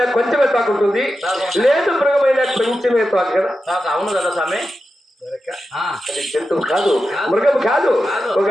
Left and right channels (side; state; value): both; normal; correlation 0.90